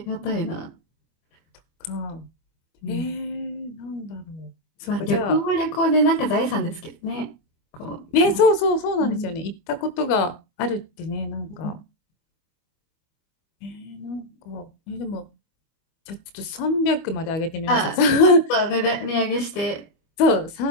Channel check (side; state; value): right; late; 25 ms